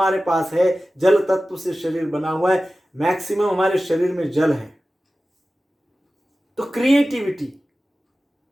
पास है, जल तत्व से शरीर बना हुआ है, मैक्सिमम हमारे शरीर में जल है। तो क्रिएटिविटी।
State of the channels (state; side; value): normal; both; correlation 0.95